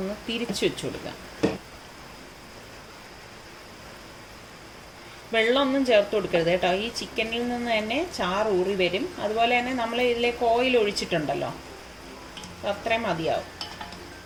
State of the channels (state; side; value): identical; both; correlation 1.00